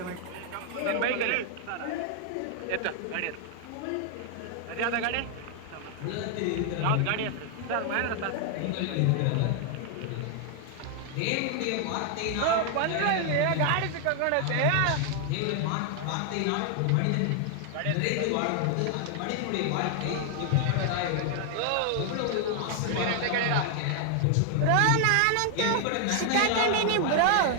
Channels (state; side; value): different; both; correlation 0.00